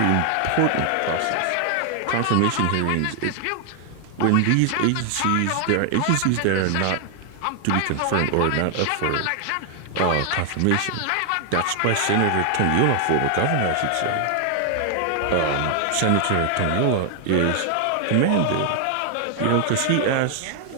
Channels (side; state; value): both; different; correlation 0.00